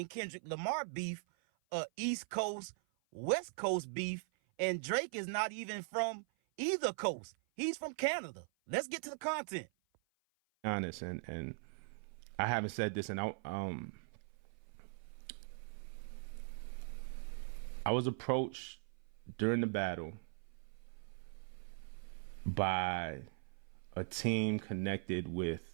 Kendrick Lamar beef a East Coast, West Coast beef. And Drake is not even from either coast. He's from Canada. Let's get to the content. Honest, and I haven't said this, and I was approached during the battle by a team connected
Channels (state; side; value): silent; left; 51 dB below the other